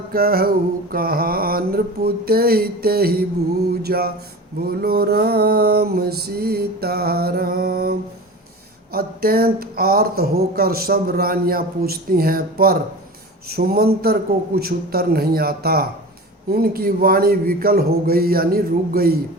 कहु कहाँ नृपु तेहि तेहि बूझा। बोलो राम सीताराम। अत्यंत आर्त होकर सब रानियां पूछती हैं, पर सुमंतर को कुछ उत्तर नहीं आता। उनकी वाणी विकल हो गई यानी रुक गई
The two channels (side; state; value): both; normal; correlation 0.33